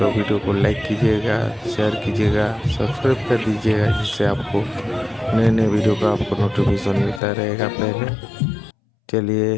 वीडियो को लाइक कीजिएगा, शेयर कीजिएगा, सब्सक्राइब कर दीजिएगा, जिससे आपको नए नए वीडियो का आपको नोटिफिकेशन मिलता रहेगा पहले। चलिए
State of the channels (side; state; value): right; drops out; at 7.2 s